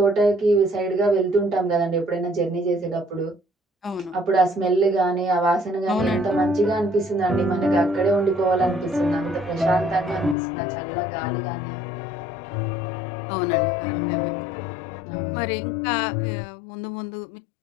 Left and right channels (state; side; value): drops out; right; at 10.4 s